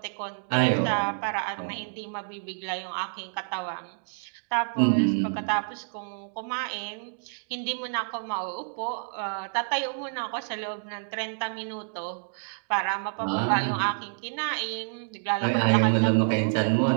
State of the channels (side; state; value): left; silent; digital silence